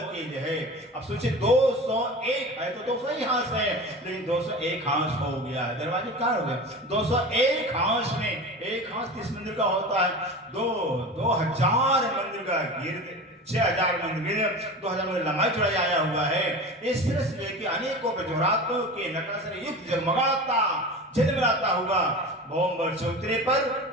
की जो है। अब सोचिए 201 है तो 200 ही हांस है, लेकिन 201 हांस हो गया है, दरवाजे क्या हो गए 201 हांस में, एक हांस 30 मंदिर का होता है, 2000 मंदिर का गिर्द, 6000 मंदिर, 2000 मंदिर लंबाई चौड़ाई आया हुआ है। इस तरह से लेके अनेकों बेजोरातों के नकाशे युक्त जगमगाता झिलमिलाता हुआ भौम बर चौतरे पर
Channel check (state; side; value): normal; both; correlation 0.32